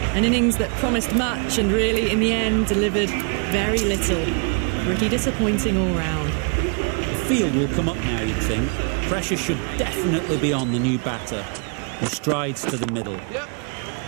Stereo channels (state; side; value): quieter; left; 38.2 dB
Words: An innings that promised much and really, in the end, delivered very little. Pretty disappointing all round. The field will come up now, you'd think. Pressure should definitely be on the new batter, who strides to the middle. Yep.